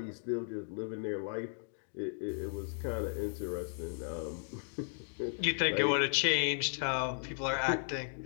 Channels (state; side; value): silent; right; digital silence